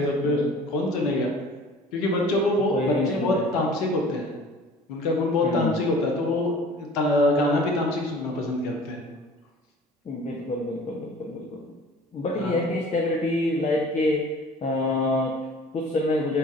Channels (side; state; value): both; normal; correlation 0.47